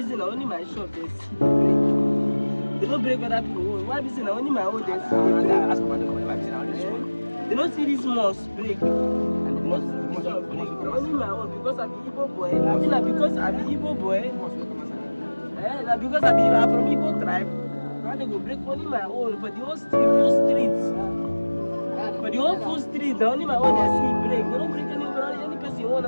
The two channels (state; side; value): inverted; both; correlation -1.00